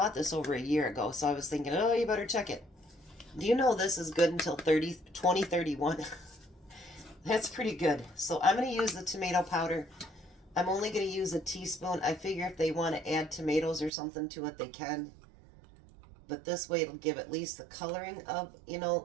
this over a year ago, so I was thinking, oh, you better check it. Do you know this is good until 2031? That's pretty good. So I'm going to use the tomato powder. I'm only going to use a teaspoon. I figure if they want to add tomatoes or something to it, they can. But this way it'll give at least the coloring of, you know,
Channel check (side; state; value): left; drops out; at 13.9 s